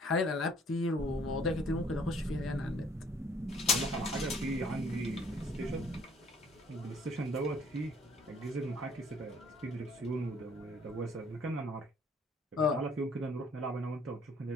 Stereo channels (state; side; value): normal; both; correlation 0.58